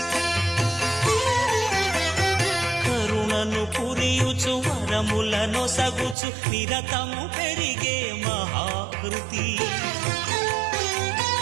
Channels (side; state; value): left; drops out; at 6.2 s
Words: కరుణను పురియుచు వరములను సగుచు నిరతము పెరిగే మహాకృతి.